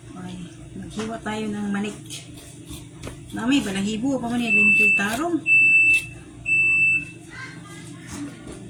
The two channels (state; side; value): identical; both; correlation 1.00